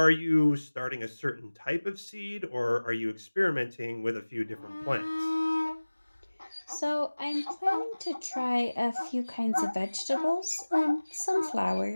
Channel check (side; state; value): both; inverted; correlation -1.00